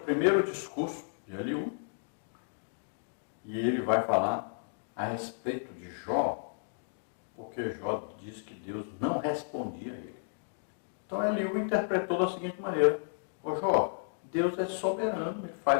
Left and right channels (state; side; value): silent; right; digital silence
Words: primeiro discurso de Eliú, e ele vai falar a respeito de Jó, porque Jó diz que Deus não respondia a ele. Então Eliú interpretou da seguinte maneira: ô Jó, Deus é soberano, ele